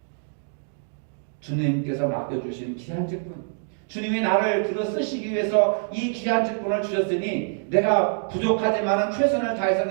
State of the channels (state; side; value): silent; left; digital silence